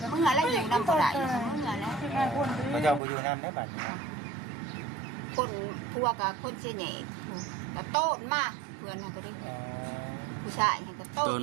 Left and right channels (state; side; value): drops out; left; at 3.0 s